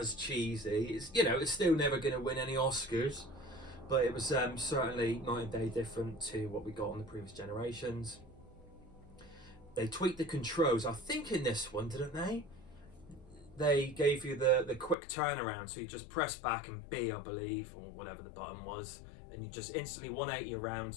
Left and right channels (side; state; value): right; drops out; at 15.0 s